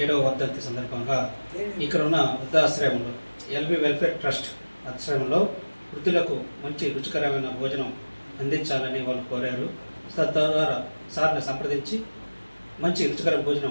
7వ వర్ధంతి సందర్భంగా ఇక్కడ ఉన్న వృద్ధాశ్రమంలో ఎల్బీ వెల్ఫేర్ ట్రస్ట్ ఆశ్రమంలో వృద్ధులకు మంచి రుచికరమైన భోజనం అందించాలని వాళ్ళు కోరారు. తద్వారా సార్ని సంప్రదించి మంచి రుచికర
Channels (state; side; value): inverted; both; correlation -1.00